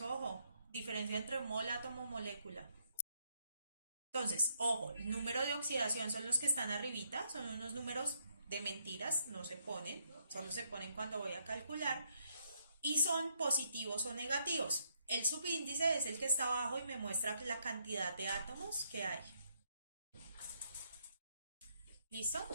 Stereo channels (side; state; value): both; inverted; correlation -0.75